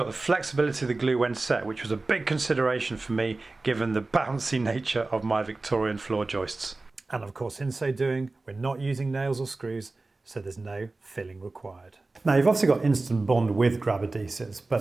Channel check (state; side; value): quieter; left; 3.3 dB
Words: the flexibility of the glue when set, which was a big consideration for me given the bouncy nature of my Victorian floor joists. And of course, in so doing, we're not using nails or screws, so there's no filling required. Now, you've obviously got instant bond with grab adhesives,